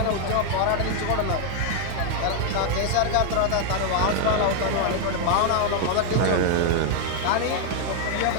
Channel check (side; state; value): both; different; correlation 0.00